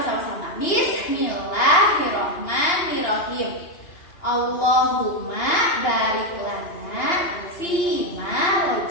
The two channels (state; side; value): late; right; 2.8 ms